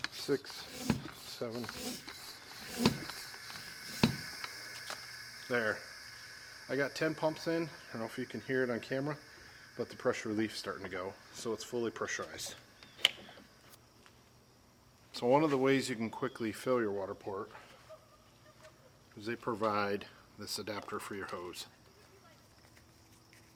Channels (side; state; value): both; identical; correlation 1.00